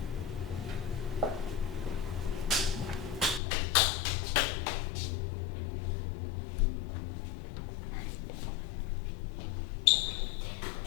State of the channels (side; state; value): right; drops out; at 3.4 s